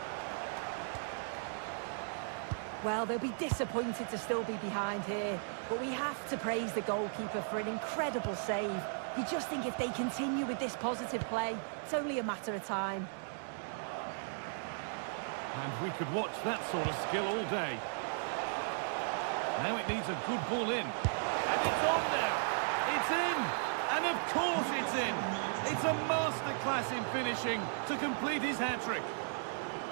Well, they'll be disappointed to still be behind here, but we have to praise the goalkeeper for an incredible save. You just think if they continue with this positive play, it's only a matter of time. And we could watch that sort of skill all day. Now it needs a good ball in. And it's on now. It's in. And of course it's in. It's a masterclass in finishing to complete his hat-trick.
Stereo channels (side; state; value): left; silent; digital silence